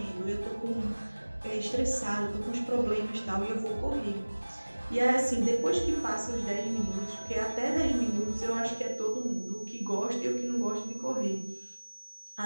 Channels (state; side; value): inverted; both; correlation -1.00